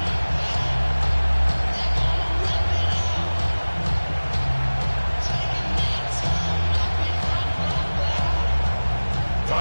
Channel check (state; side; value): inverted; both; correlation -1.00